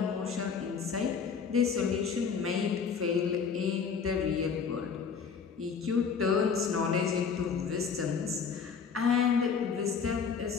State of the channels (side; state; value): right; quieter; 6.1 dB